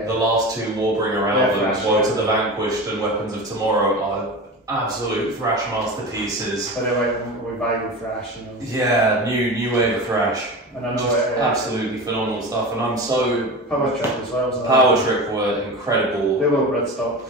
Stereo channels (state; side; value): normal; both; correlation 0.29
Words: The last 2 Warbringer albums, Woe to the Vanquished and Weapons of Tomorrow, are absolute thrash masterpieces. But they're like revival thrash, you know. Yeah, new wave of thrash. And I know absolutely phenomenal stuff, and I'm so... Power Trip as well. Power Trip were incredible. They were Bloodstock.